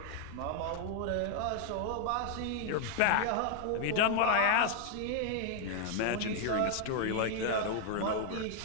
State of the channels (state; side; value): different; both; correlation 0.00